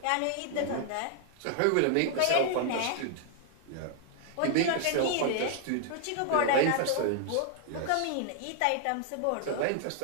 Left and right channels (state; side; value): different; both; correlation 0.00